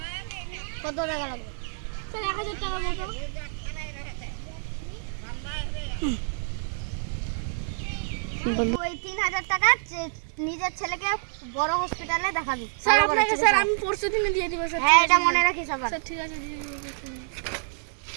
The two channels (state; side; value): silent; left; digital silence